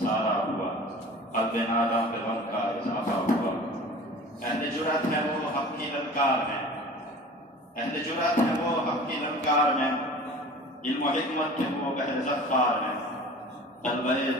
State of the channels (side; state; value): both; normal; correlation 0.41